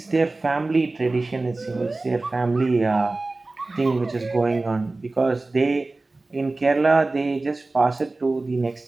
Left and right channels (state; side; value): quieter; left; 3.2 dB